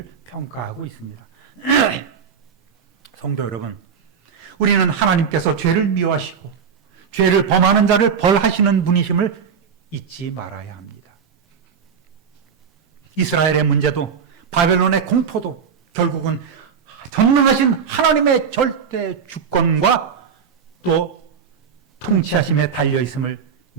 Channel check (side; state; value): left; quieter; 6.7 dB